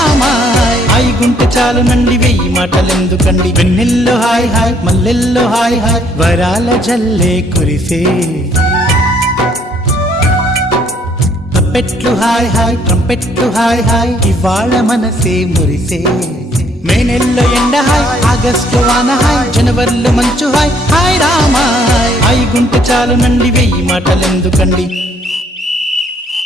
హాయ్ గుంటె చాలు నండి వెయ్యి మాటలెందుకండి వెన్నెల్లో హాయ్ హాయ్ మల్లెల్లో హాయ్ హాయ్ వరాల జల్లే కురిసే తప్పెట్లు హాయ్ హాయ్ ట్రంపెట్లు హాయ్ హాయ్ ఇవాళ మనసే మురిసే మే నెల్లో ఎండ హాయ్ ఆగస్టు వాన హాయ్ జనవరిలో మంచు హాయ్ హాయ్ రామా హాయ్ గుంటె చాలు నండి వెయ్యి మాటలెందుకండి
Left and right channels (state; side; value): normal; both; correlation 0.65